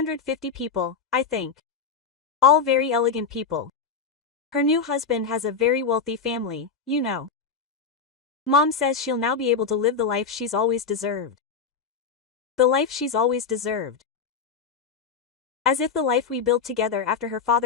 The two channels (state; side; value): quieter; right; 5.7 dB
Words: people, I think. All very elegant people. Her new husband has a very wealthy family, you know. Mom says she'll now be able to live the life she's always deserved. The life she's always deserved. As if the life we built together after her